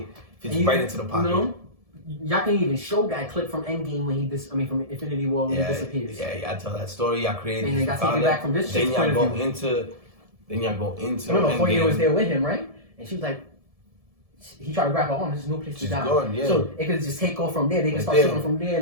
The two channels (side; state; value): left; late; 1.7 ms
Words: Fits right into the pocket. You know, y'all can even show that clip from Endgame when from Infinity War when he disappears. Yeah, I tell that story. Y'all created and this. y'all take it back from this Then shit's y'all point go of view. into. Remember, Endgame. Koye was there with him, right? And she was like, he tried to grab her arm. There's no place to She's die. gone, yeah. So it could just take off from there. They could It's start there. shooting from there,